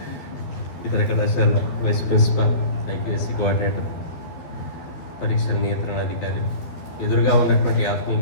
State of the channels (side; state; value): right; late; 12 ms